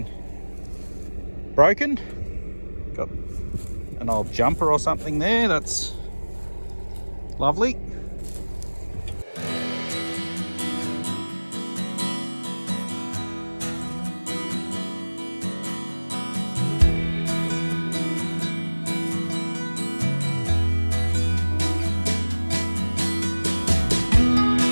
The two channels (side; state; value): both; inverted; correlation -1.00